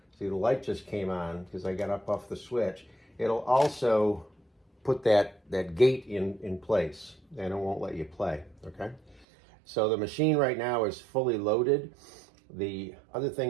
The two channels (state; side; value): drops out; left; at 9.2 s